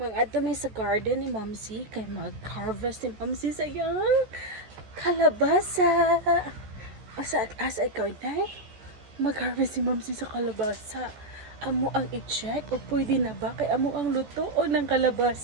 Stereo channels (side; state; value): left; late; 14 ms